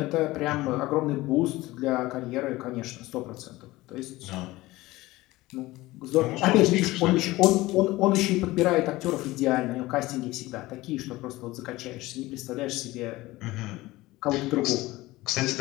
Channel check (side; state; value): right; quieter; 18.9 dB